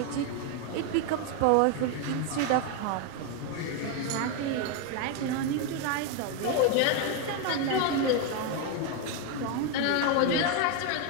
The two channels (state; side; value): different; both; correlation 0.01